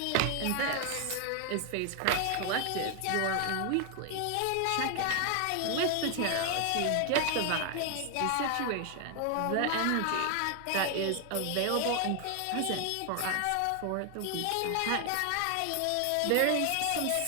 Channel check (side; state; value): both; different; correlation 0.00